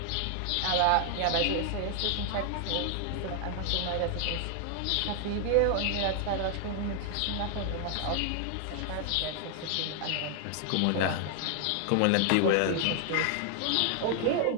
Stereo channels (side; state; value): both; different; correlation 0.00